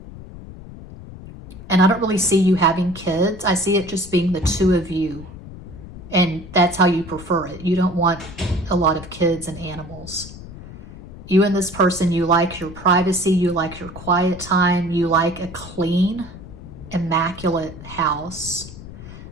I don't really see you having kids. I see it just being the two of you. And that's how you prefer it. You don't want a lot of kids and animals. You and this person, you like your privacy, you like your quiet time, you like a clean, immaculate house.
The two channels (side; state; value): left; noise; rumble, 15 dB below the sound